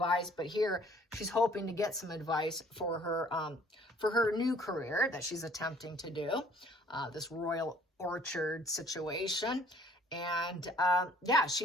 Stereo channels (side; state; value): both; normal; correlation 0.57